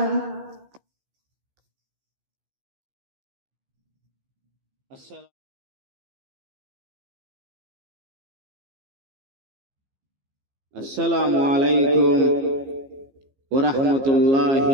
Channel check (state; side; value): late; left; 15 ms